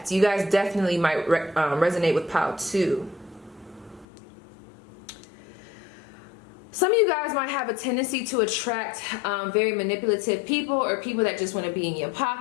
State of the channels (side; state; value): right; drops out; at 4.0 s